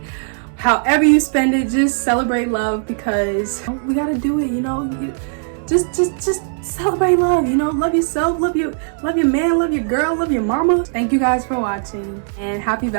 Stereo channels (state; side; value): silent; left; digital silence